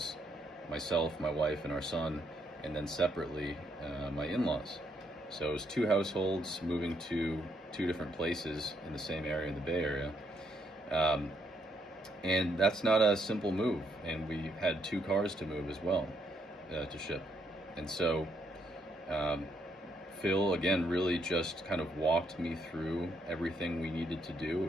myself, my wife, and our son, and then separately my in-laws. So it was two households moving to two different places in the same area in the Bay Area. And that's not a simple move. And we had two cars to move as well, to ship. And so Phil, again, really just kind of walked me through everything we needed to do. It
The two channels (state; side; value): normal; both; correlation 0.74